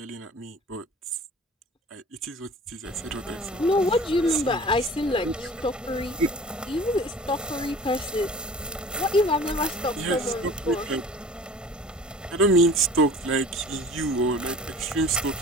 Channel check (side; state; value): both; normal; correlation 0.44